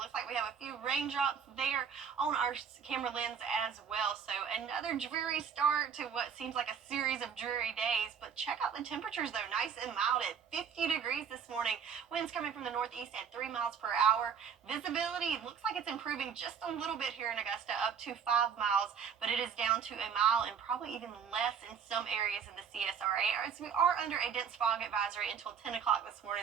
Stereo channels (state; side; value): quieter; left; 7.1 dB